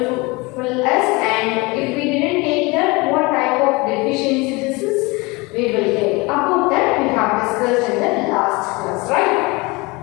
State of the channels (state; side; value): quieter; right; 25.2 dB